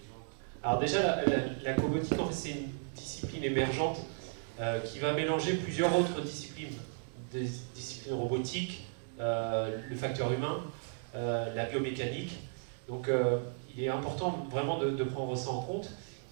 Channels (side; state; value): left; silent; digital silence